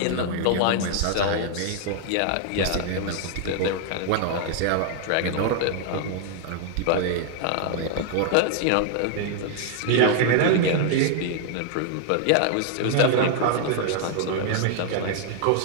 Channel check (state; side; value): different; both; correlation 0.00